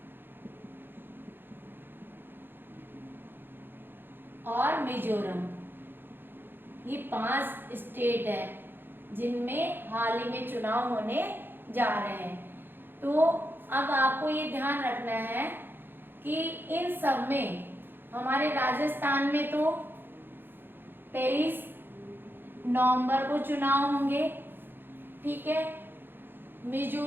और मिजोरम। ये 5 स्टेट है जिनमें हाल ही में चुनाव होने जा रहे हैं। तो अब आपको ये ध्यान रखना है कि इन सब में हमारे राजस्थान में तो 23 नवंबर को चुनाव होंगे, ठीक है।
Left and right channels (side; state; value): left; late; 0.099 ms